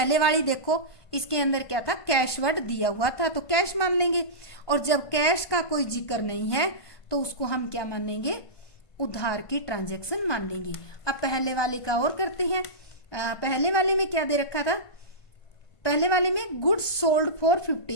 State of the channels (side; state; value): right; late; 1.2 ms